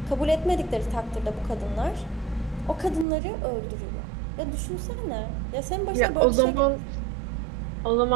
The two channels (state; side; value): drops out; left; at 3.1 s